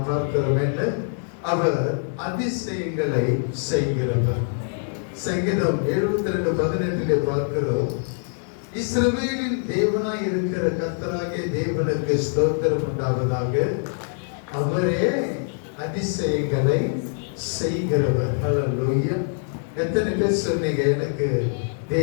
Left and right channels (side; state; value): right; silent; 62 dB below the other